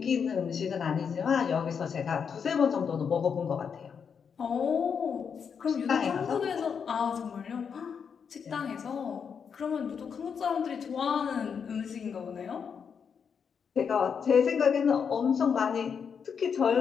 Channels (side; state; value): right; quieter; 6.7 dB